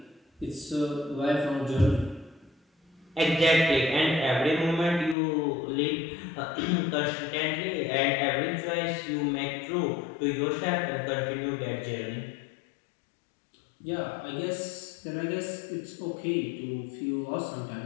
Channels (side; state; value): right; drops out; at 5.2 s